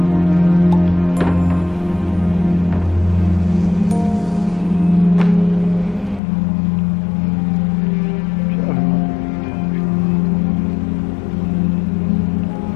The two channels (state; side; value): drops out; right; at 6.2 s